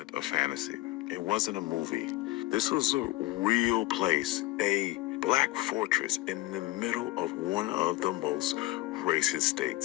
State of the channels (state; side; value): quieter; right; 19.2 dB